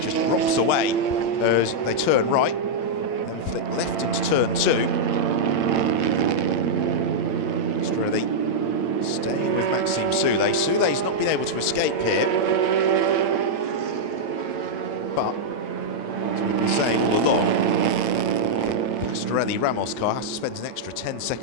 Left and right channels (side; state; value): right; late; 8.8 ms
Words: just rocks away as they turn right, then flip left into turn 2. Just really staying with Maxime Soulet. Soulet's not been able to escape here. But, as we've been saying all along, Pastorelli Ramos car has to spend an extra 10